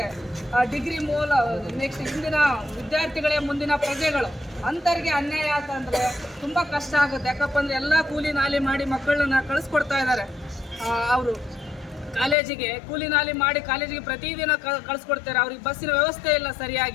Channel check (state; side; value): drops out; right; at 12.4 s